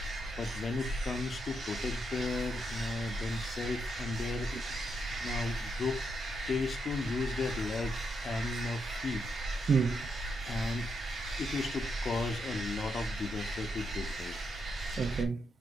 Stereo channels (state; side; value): normal; both; correlation 0.80